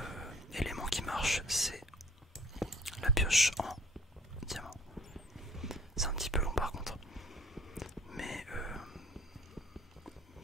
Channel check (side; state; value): both; normal; correlation 0.55